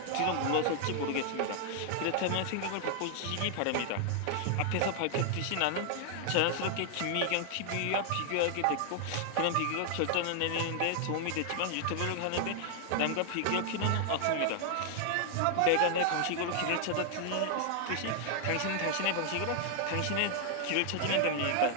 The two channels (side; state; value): both; different; correlation 0.00